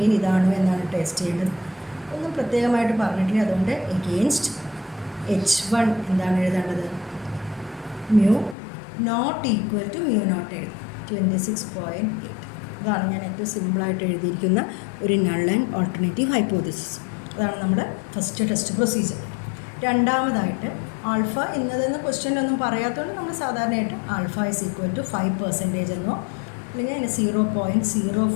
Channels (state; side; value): drops out; right; at 8.6 s